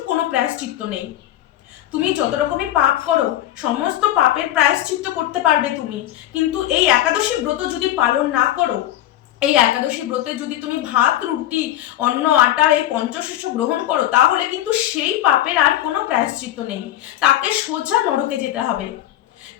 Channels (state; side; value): quieter; right; 13.3 dB